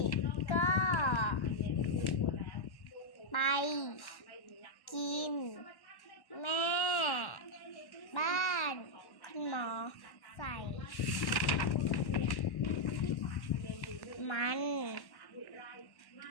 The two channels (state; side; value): late; right; 1.1 ms